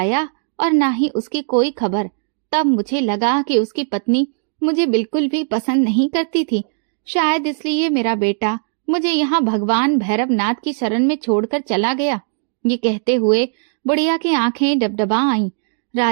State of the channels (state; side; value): silent; left; digital silence